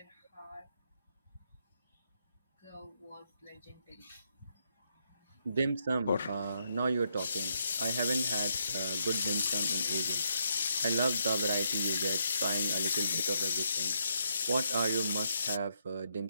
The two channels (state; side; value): inverted; both; correlation -0.77